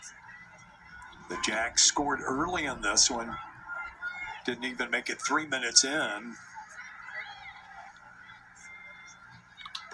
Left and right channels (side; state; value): both; identical; correlation 1.00